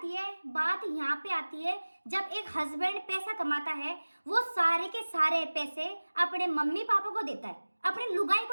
है? बात यहाँ पे आती है, जब एक हस्बैंड पैसा कमाता है, वो सारे के सारे पैसे अपने मम्मी पापा को देता है, अपने लुगाई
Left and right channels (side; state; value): both; inverted; correlation -1.00